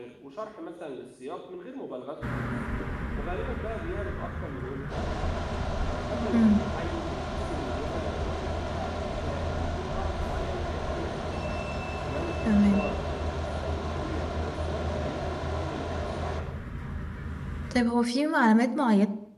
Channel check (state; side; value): identical; both; correlation 1.00